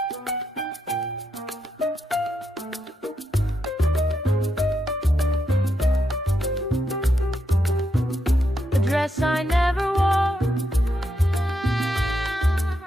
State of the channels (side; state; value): both; normal; correlation 0.82